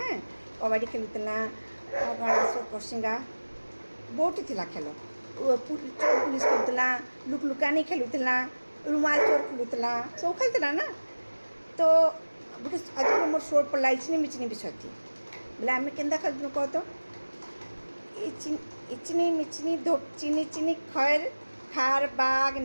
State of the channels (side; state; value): both; inverted; correlation -1.00